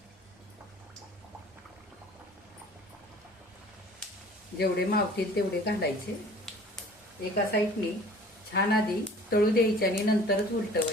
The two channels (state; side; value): normal; both; correlation 0.48